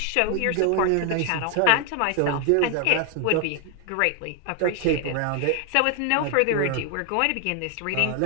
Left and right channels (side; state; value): both; different; correlation 0.00